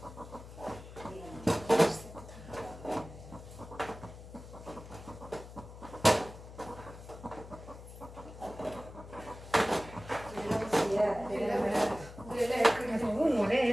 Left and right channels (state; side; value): noise; left; hum, 15 dB below the sound